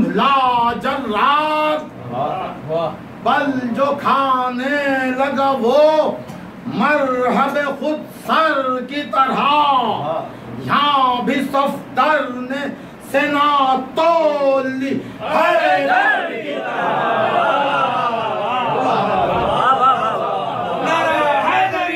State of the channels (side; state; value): both; identical; correlation 1.00